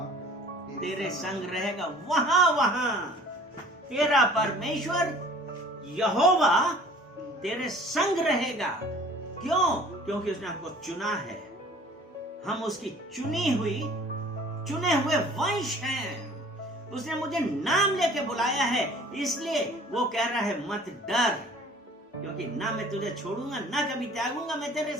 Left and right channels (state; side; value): normal; both; correlation 0.50